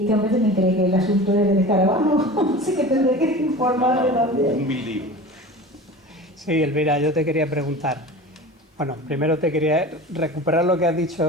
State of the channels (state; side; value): normal; both; correlation 0.35